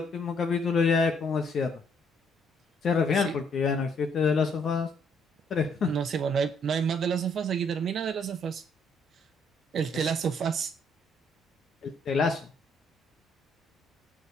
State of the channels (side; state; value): both; normal; correlation 0.68